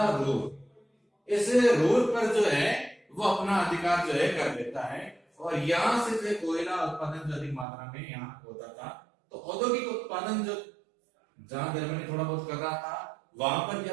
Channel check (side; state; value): left; drops out; at 7.7 s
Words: रूर। इस रूर पर जो है वो अपना अधिकार जो है कर लेता है और यहां से जो कोयला उत्पादन जो अधिक मात्रा में यहाँ होता था। तो औद्योगिक उत्पादन जो जहां जर्मनी थोड़ा बहुत कर रहा था वहां पर